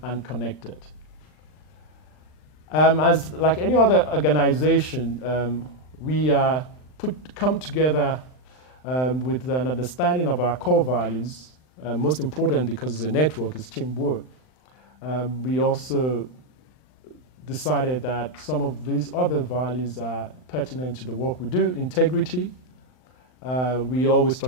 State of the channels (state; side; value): late; right; 39 ms